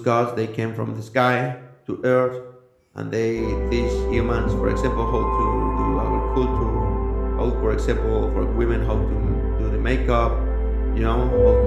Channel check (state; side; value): identical; both; correlation 1.00